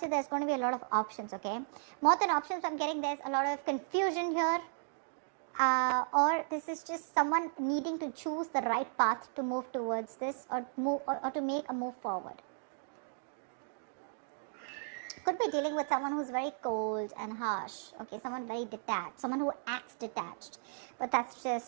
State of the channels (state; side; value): silent; left; digital silence